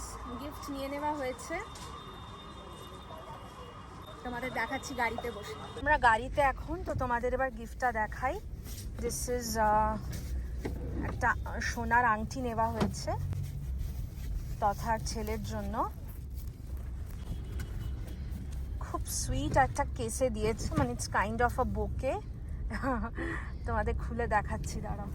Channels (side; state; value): both; identical; correlation 1.00